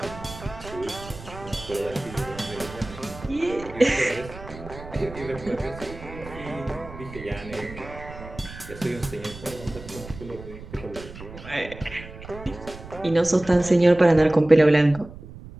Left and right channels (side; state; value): right; noise; rumble, 15 dB below the sound